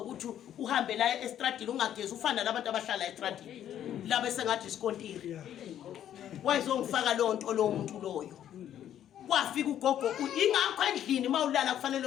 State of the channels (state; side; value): quieter; right; 10.7 dB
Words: uhambe la estradini ungagezi ufana nabantu abahlala estradini laba sengathi isikontiri wayezongifaka lonto lo muntu loyo kwafika ugogo ingakho endlini mawulala kufanele